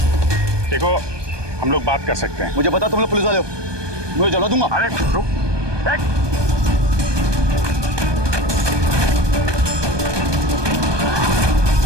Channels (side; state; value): left; late; 1.2 ms